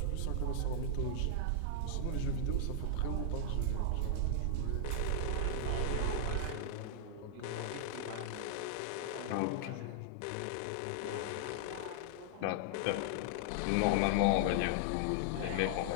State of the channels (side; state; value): both; different; correlation -0.01